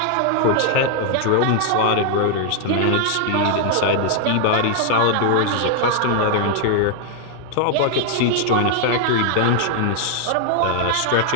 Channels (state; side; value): different; both; correlation 0.00